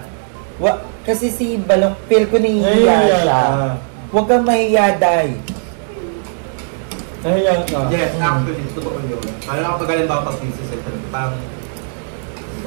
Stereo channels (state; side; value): silent; left; digital silence